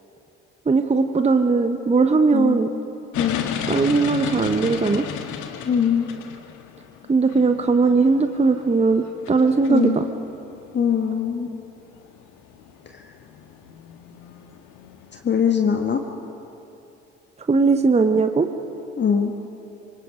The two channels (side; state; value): both; normal; correlation 0.63